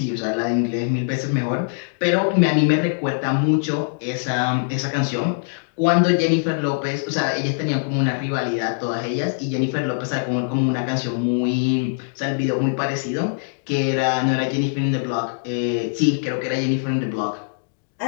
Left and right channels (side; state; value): right; silent; digital silence